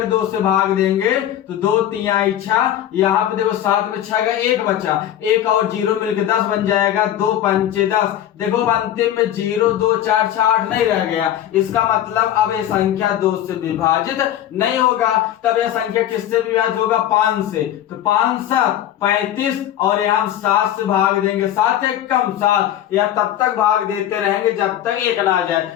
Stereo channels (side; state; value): right; quieter; 11.5 dB